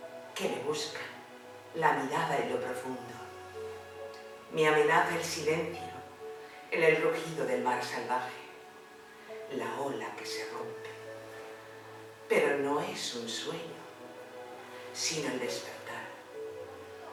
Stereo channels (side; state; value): both; identical; correlation 1.00